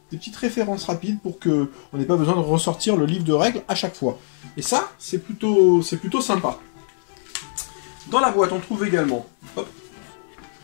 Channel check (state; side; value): silent; right; digital silence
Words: petites références rapides pour qu'on n'ait pas besoin de ressortir le livre de règles à chaque fois. Et ça, c'est plutôt sympa. Dans la boîte, on trouve également